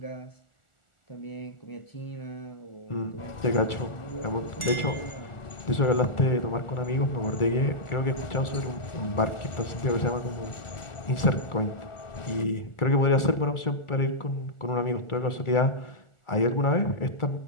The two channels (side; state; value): right; late; 1.4 ms